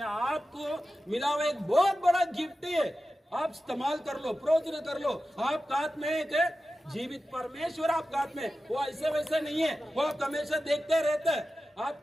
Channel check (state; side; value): normal; both; correlation 0.93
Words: आपको मिला हुआ एक बहुत बड़ा गिफ्ट है। आप इस्तेमाल कर लो, प्रयोजन कर लो। आपका हाथ में एक जीवित परमेश्वर आपका हाथ में, वो ऐसे वैसे नहीं है, वो आप हमेशा देखते रहते हैं।